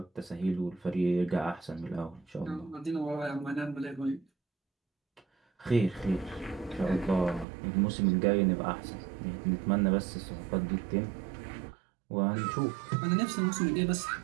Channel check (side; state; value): left; drops out; at 7.5 s